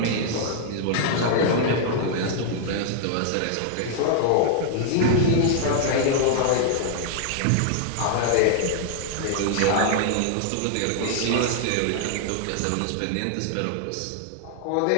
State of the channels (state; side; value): different; both; correlation -0.01